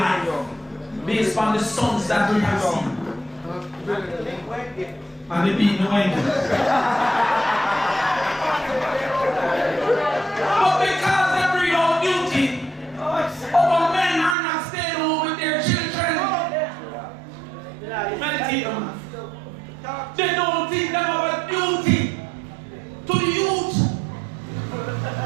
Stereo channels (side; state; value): left; drops out; at 14.4 s